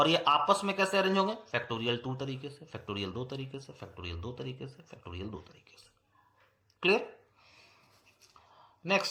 ये आपस में कैसे अरेंज होंगे, फैक्टोरियल 2 तरीके से, फैक्टोरियल 2 तरीके से, फैक्टोरियल 2 तरीके से, फैक्टोरियल 2 तरीके से। क्लियर?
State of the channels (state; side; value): identical; both; correlation 1.00